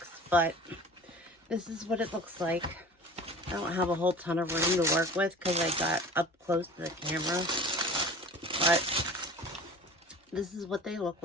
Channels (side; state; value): both; normal; correlation 0.39